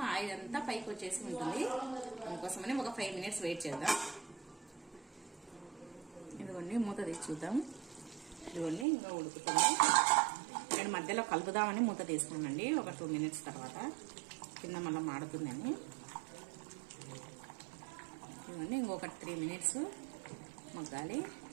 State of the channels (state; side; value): drops out; left; at 8.8 s